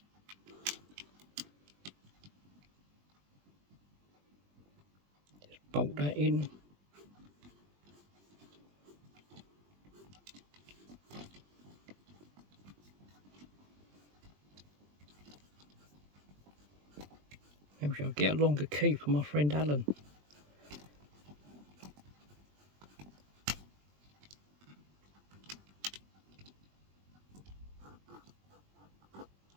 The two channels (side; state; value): left; late; 20 ms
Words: Just bolt that in. Maybe I'll get a longer key for my friend Alan.